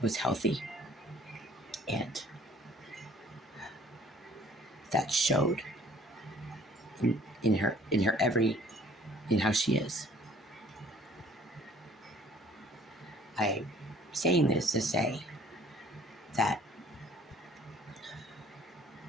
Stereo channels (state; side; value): normal; both; correlation 0.54